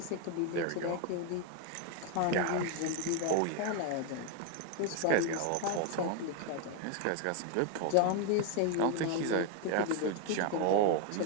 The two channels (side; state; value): both; different; correlation 0.00